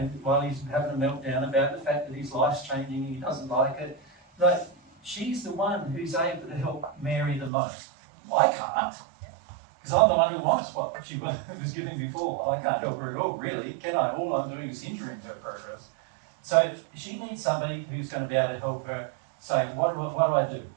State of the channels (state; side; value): drops out; left; at 7.5 s